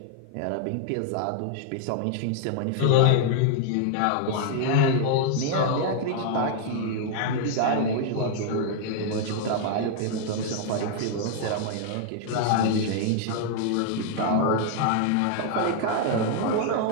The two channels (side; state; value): both; different; correlation 0.00